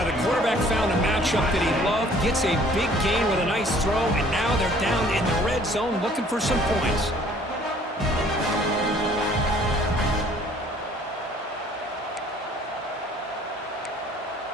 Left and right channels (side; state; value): both; normal; correlation 0.56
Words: the quarterback found a matchup that he loved, gets a big gain with a nice throw, and now they're down in the red zone looking for some points.